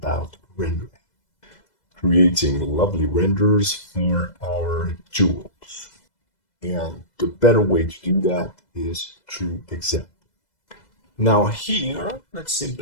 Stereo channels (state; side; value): late; right; 2.0 ms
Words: rendering. Creating lovely renders for our jewels. And the better way to do that is through example. Now here, let's